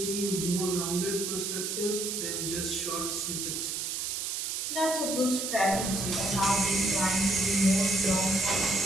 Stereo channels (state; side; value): noise; right; hiss, 2 dB below the sound